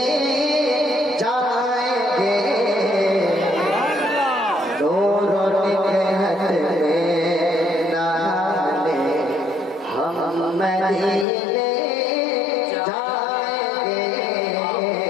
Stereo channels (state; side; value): drops out; right; at 11.2 s